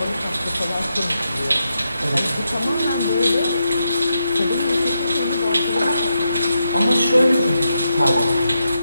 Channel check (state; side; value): inverted; both; correlation -0.84